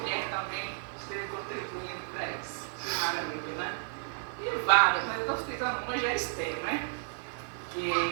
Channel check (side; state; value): left; silent; 56 dB below the other